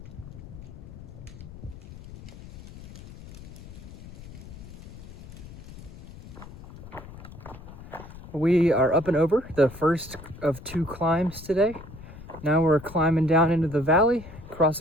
We are up and over the first of two climbs today. Now we're climbing down into the valley,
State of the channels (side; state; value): left; noise; rumble, 15 dB below the sound